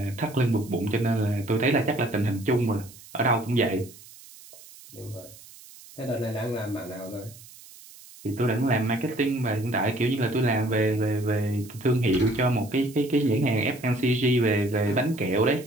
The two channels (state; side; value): noise; right; hiss, 20 dB below the sound